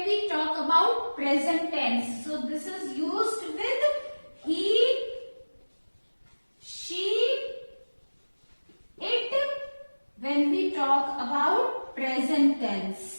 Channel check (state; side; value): inverted; both; correlation -1.00